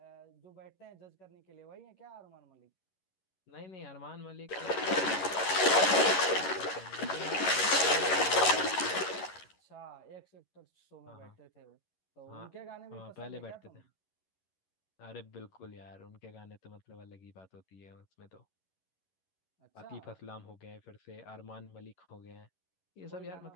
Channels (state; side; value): late; right; 11 ms